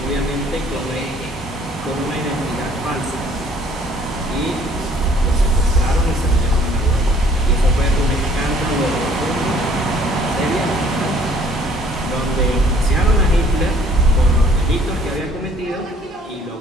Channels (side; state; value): both; normal; correlation 0.59